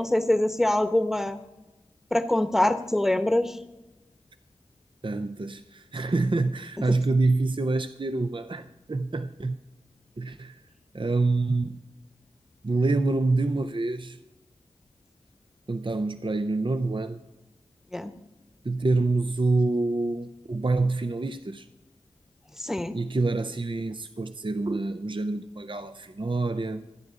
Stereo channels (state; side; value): normal; both; correlation 0.93